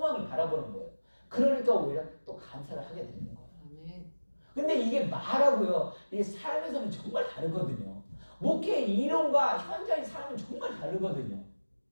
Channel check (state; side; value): inverted; both; correlation -1.00